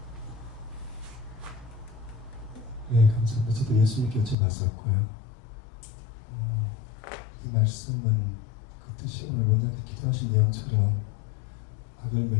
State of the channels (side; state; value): right; drops out; at 4.4 s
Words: 네, 감사합니다. 저도 예수님께 여쭤봤었고요. 이 말씀은 그 뜻이 오늘 원장님께서 기도하신 내용처럼 악을